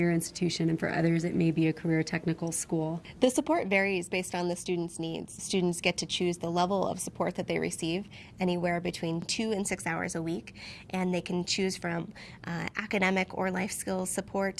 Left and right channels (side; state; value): both; identical; correlation 1.00